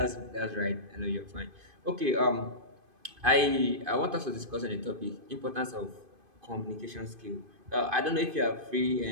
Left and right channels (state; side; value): late; left; 2.5 ms